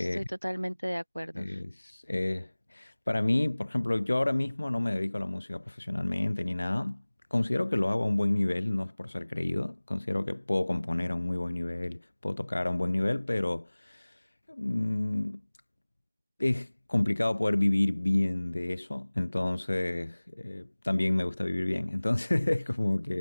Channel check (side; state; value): both; inverted; correlation -1.00